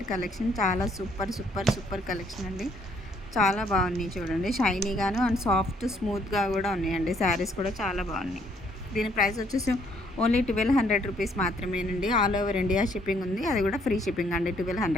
కలెక్షన్ చాలా సూపర్ కలెక్షన్ అండి. చాలా బాగున్నాయి చూడండి. షైనీగాను అండ్ సాఫ్ట్ స్మూత్గా కూడా ఉన్నాయండి. శారీస్ కూడా చాలా బాగున్నాయి. దీని ప్రైస్ వచ్చేసి ఓన్లీ 1200 రూపీస్ మాత్రమేనండి. ఆల్ ఓవర్ ఇండియా షిప్పింగ్ ఉంది, అది కూడా ఫ్రీ షిప్పింగ్ అండి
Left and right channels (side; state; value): both; normal; correlation 0.67